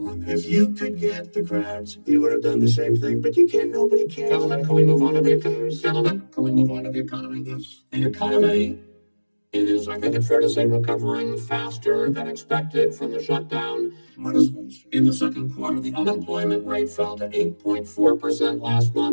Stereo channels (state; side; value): inverted; both; correlation -1.00